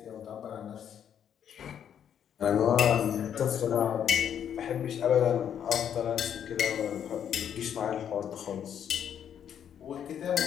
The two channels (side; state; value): right; quieter; 9.0 dB